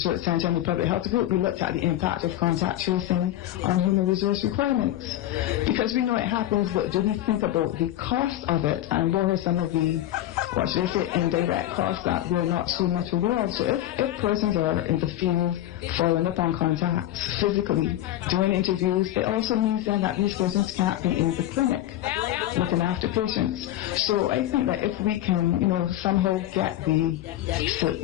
Center and the Public Health Group, we looked at the impact of contact tracing on human resource requirements. Because we know it happens, but do we think about the cost of it and what are some of the, indirect costs that we're not so much aware of? So if persons are in the field following up on contacts physically, doing interviews, it also means then that these persons can't be in the clinic looking after patients. So I think that if we can, somehow get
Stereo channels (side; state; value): right; quieter; 13.4 dB